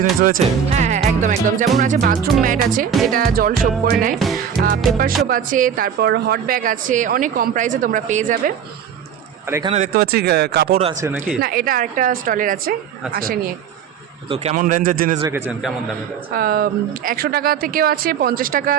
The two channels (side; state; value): left; quieter; 8.1 dB